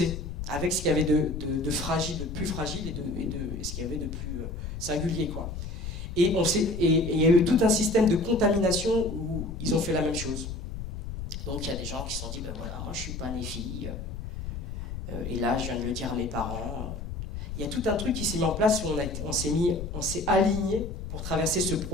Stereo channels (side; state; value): left; noise; rumble, 7 dB below the sound